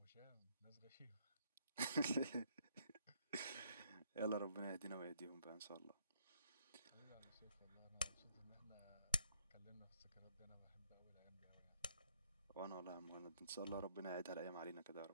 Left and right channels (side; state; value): both; inverted; correlation -0.68